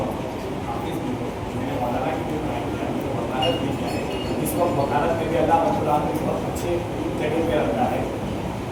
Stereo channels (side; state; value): both; identical; correlation 1.00